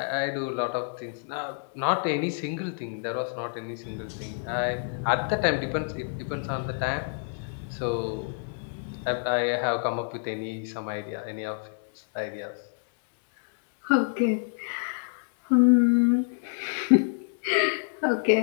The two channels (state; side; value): silent; right; digital silence